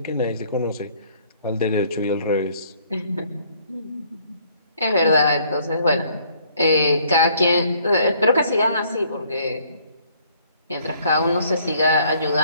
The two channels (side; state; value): both; inverted; correlation -0.62